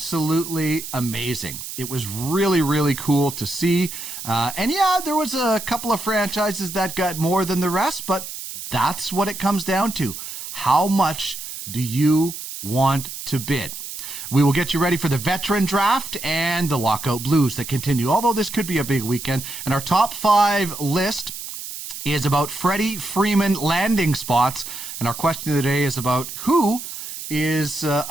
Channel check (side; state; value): right; noise; hiss, 9 dB below the sound